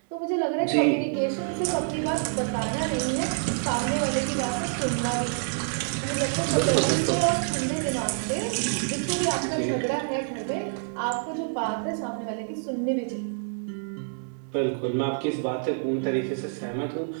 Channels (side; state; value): left; silent; digital silence